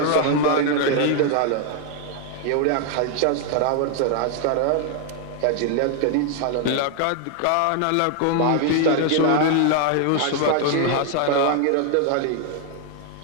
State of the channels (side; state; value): both; different; correlation 0.00